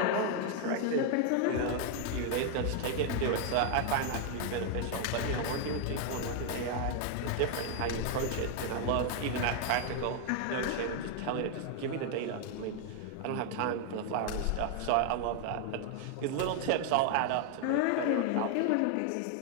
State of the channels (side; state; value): both; different; correlation 0.00